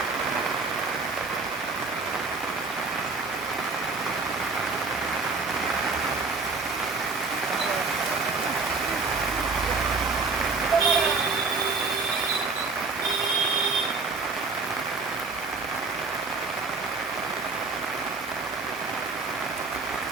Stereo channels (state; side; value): quieter; left; 4.0 dB